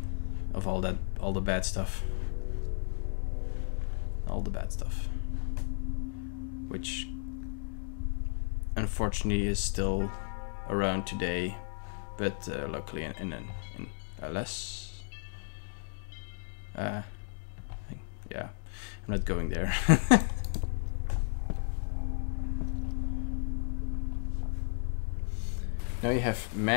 of all the bad stuff. All the bad stuff. Which unfortunately is still around today, but luckily in a less yeah, I'm not going there. Now you have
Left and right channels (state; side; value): silent; right; 55 dB below the other